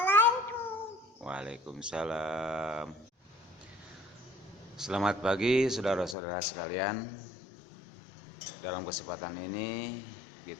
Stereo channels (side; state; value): right; drops out; at 6.2 s